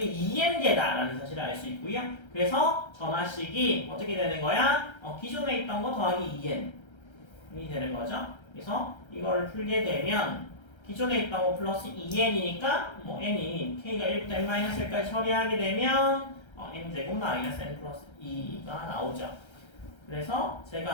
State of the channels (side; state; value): right; late; 1.3 ms